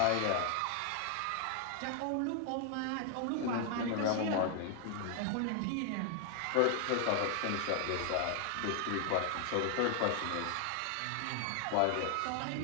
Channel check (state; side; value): different; both; correlation 0.00